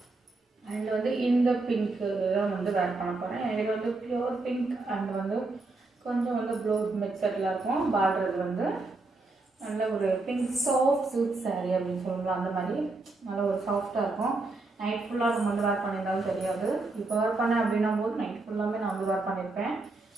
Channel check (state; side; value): quieter; left; 3.3 dB